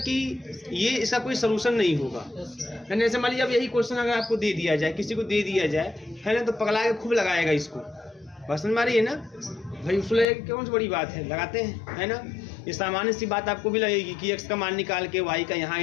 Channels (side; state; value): right; drops out; at 10.2 s